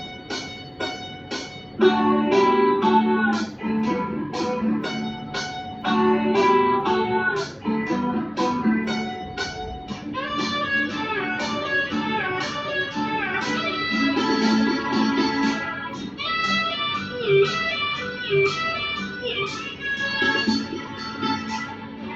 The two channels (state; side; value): identical; both; correlation 1.00